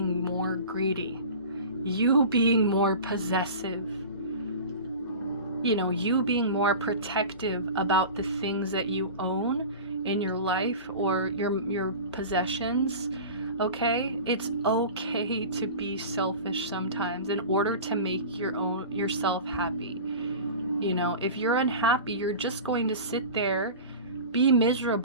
more greedy. You being more possessive, you know, you being more protective about the things that you own in your life or your possessions. Okay, it's okay to be selfish sometimes in order to make yourself happy. You know, if you're unhappy, you're just going to sit there, be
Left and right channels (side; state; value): both; inverted; correlation -0.35